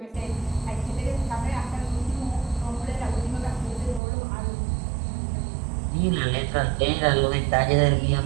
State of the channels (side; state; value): left; drops out; at 4.0 s